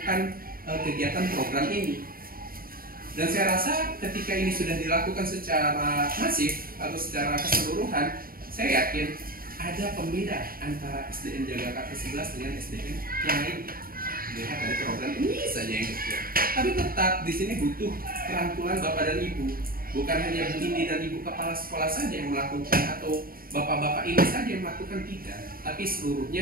kegiatan program ini. Dan saya rasa ketika ini sudah dilakukan secara masif atau secara keseluruhan, saya yakin ada pembeda antara SDN Jagakarsa 11 dengan SDN yang lain. Lihat dari program ini saja yang kecil. Tapi tetap di sini butuh rangkulan Bapak dan Ibu. Bukan hanya Bu Indi dan Ibu Kepala Sekolah saja yang melakukan atau Bapak-Bapak ini saja yang melakukan, tidak, tapi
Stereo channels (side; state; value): left; late; 0.42 ms